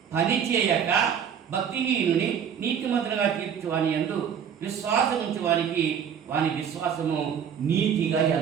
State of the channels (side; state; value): left; quieter; 8.0 dB